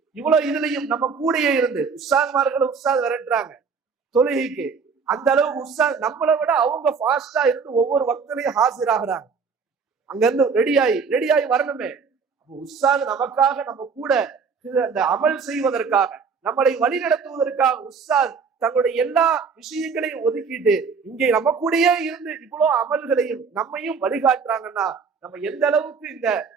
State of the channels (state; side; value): quieter; left; 5.5 dB